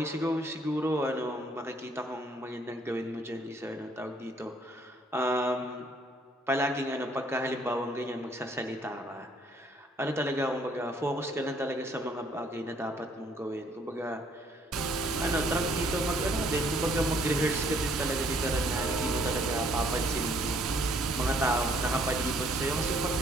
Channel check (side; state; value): both; normal; correlation 0.64